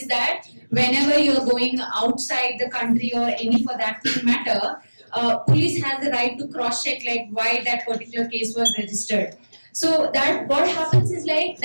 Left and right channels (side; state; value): both; inverted; correlation -1.00